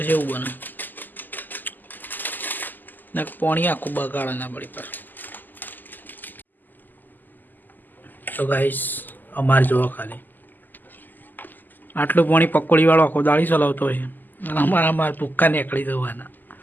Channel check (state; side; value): late; right; 0.087 ms